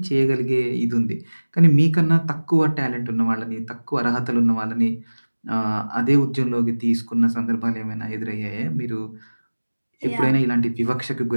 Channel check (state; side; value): inverted; both; correlation -1.00